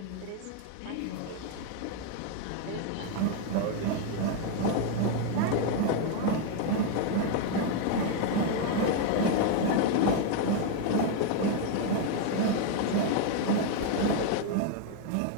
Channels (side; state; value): both; different; correlation 0.01